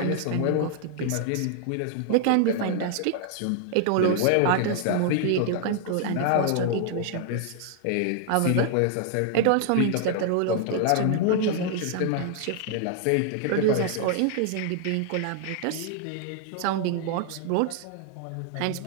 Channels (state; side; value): different; both; correlation 0.00